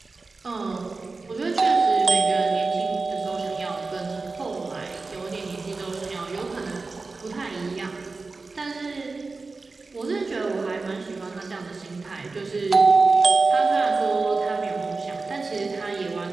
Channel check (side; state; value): left; quieter; 3.9 dB